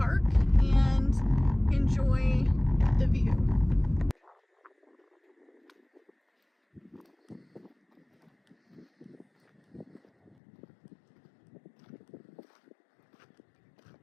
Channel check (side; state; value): right; drops out; at 10.3 s